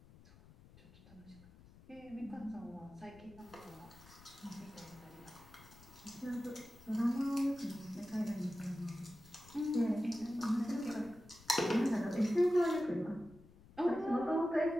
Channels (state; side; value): noise; left; rumble, 22 dB below the sound